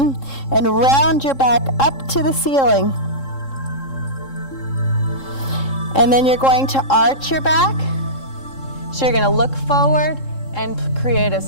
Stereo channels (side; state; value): right; late; 3.7 ms